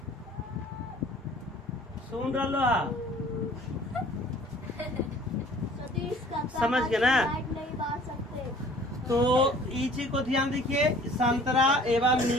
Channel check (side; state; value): both; normal; correlation 0.51